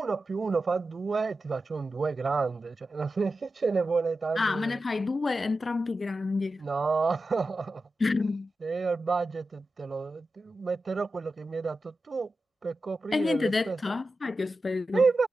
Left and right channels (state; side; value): normal; both; correlation 0.92